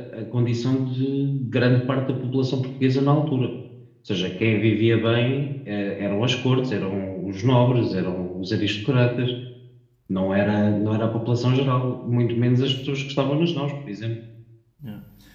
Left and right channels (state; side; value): identical; both; correlation 1.00